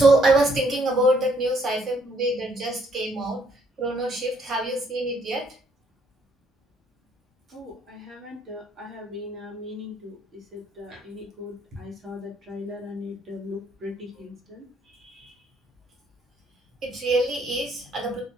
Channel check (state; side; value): normal; both; correlation 0.68